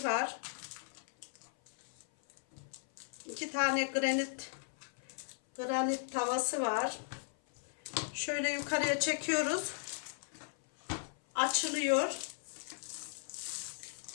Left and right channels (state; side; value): silent; right; 53 dB below the other